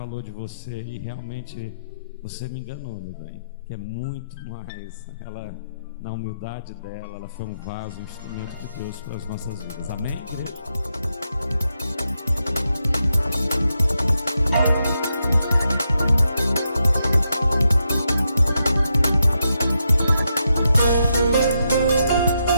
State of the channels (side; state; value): both; inverted; correlation -0.83